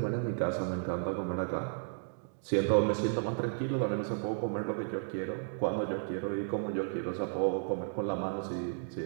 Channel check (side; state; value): left; silent; digital silence